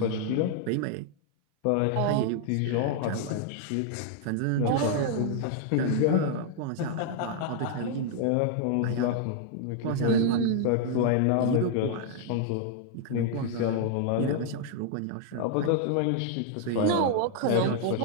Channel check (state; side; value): different; both; correlation 0.00